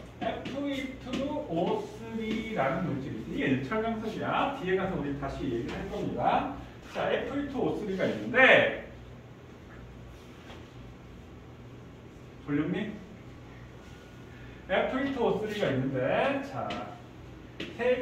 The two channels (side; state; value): both; identical; correlation 1.00